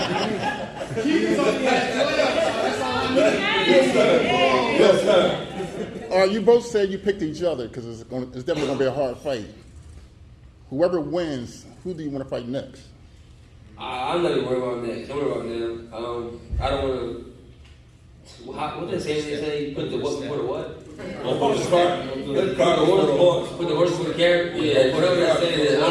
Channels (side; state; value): both; identical; correlation 1.00